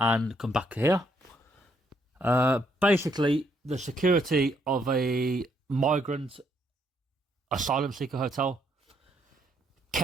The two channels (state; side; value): normal; both; correlation 0.72